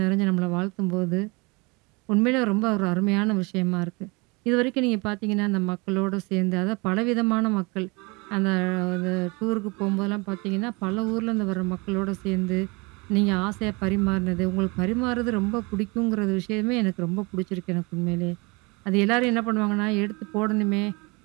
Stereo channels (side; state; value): left; quieter; 27.6 dB